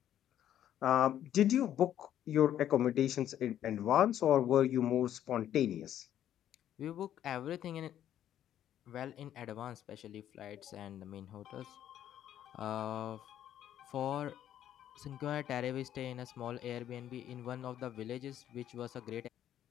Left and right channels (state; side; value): quieter; right; 11.1 dB